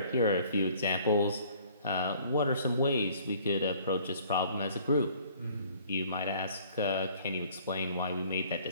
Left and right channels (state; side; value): inverted; both; correlation -0.56